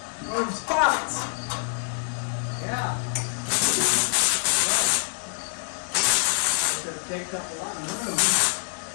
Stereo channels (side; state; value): right; silent; digital silence